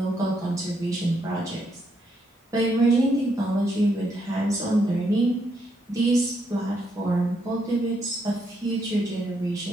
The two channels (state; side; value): normal; both; correlation 0.77